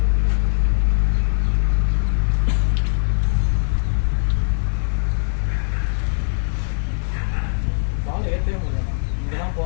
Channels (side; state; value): right; silent; 55 dB below the other